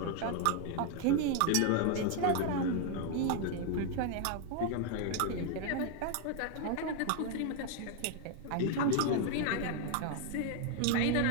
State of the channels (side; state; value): both; different; correlation 0.01